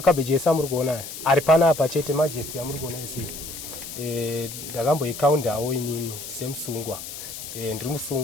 ese amuri kuonayo ari panapa chete Majesty amuri kuona ese. Ndakamboikaundawo inini semusungwa. Ndiri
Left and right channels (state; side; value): noise; left; hiss, 10 dB below the sound